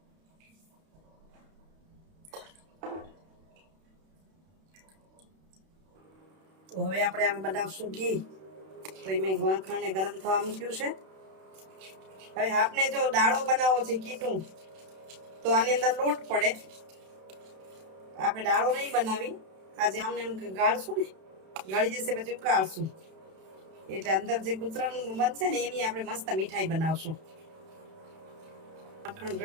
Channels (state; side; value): late; left; 31 ms